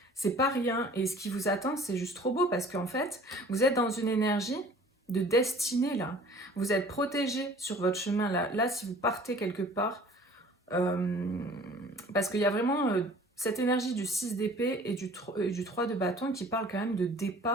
c'est pas rien. Et ce qui vous attend, c'est juste trop beau, parce qu'en fait, vous êtes dans une énergie de destinée là. Vous êtes protégé sur votre chemin là. Là, si vous partez quelque part, parce qu'il y a vraiment cette énergie du 6 d'épée et du 3 de bâton qui parle quand même de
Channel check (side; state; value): both; normal; correlation 0.49